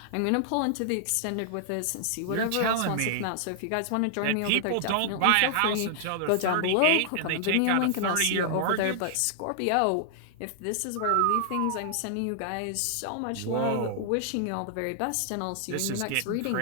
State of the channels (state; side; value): different; both; correlation -0.01